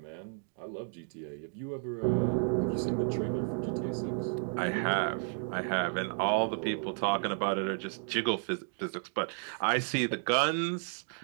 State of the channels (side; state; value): left; silent; 56 dB below the other